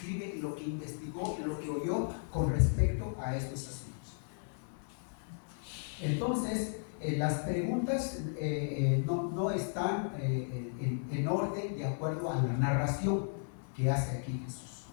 lo que investigó, lo que oyó con respecto a estos asuntos. Entonces, las preguntas no están en orden de acuerdo a la narración que hace aquí Jesús.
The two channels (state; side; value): silent; right; 54 dB below the other